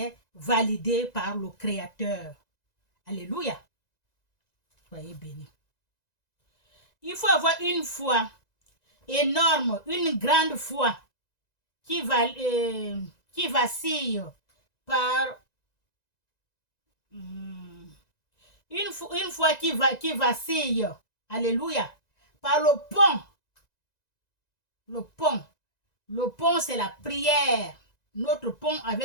validé par le Créateur. Alléluia. Soyez bénis. Il faut avoir une foi énorme, une grande foi qui vacille par une foi qui vacille, alléluia, par le pont. Le pont, c'est la prière. Notre pont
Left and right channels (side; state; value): right; late; 1.9 ms